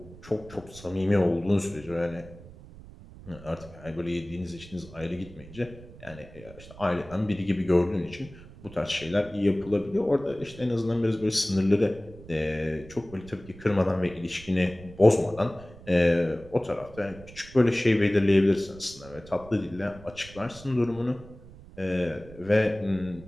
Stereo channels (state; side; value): noise; right; rumble, 18 dB below the sound